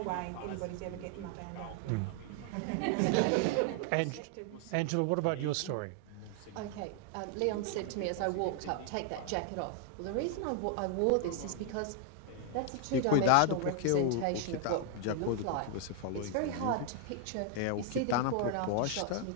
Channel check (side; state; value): both; different; correlation 0.00